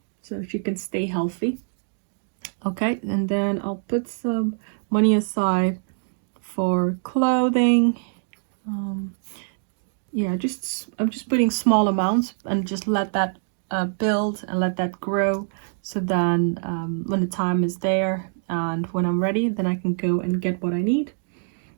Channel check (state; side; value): silent; left; digital silence